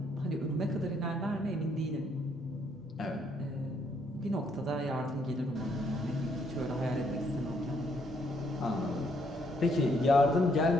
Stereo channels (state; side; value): normal; both; correlation 0.71